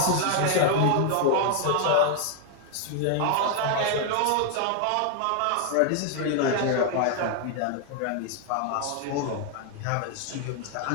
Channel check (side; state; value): both; different; correlation 0.00